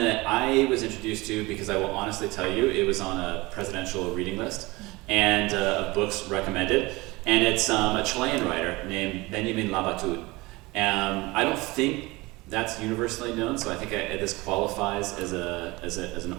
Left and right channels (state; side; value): quieter; left; 22.3 dB